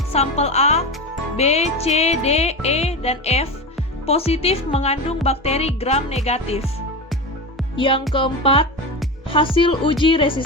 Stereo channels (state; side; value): normal; both; correlation 0.22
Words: Sampel A, B, C, D, E, dan F positif mengandung bakteri gram negatif. Yang keempat, hasil uji